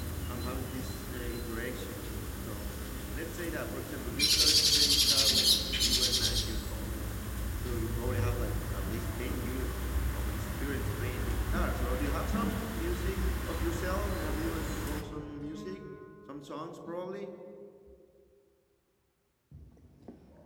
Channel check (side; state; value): both; identical; correlation 1.00